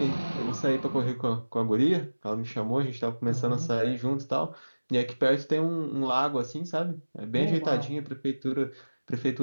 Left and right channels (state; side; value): inverted; both; correlation -1.00